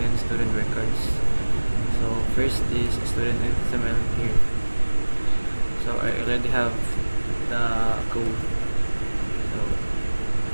student records. So first is student XML here. So I already have the code. So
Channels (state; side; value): inverted; both; correlation -1.00